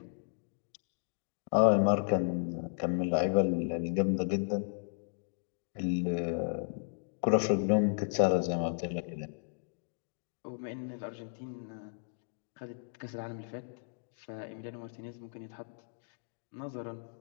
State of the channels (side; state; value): right; silent; digital silence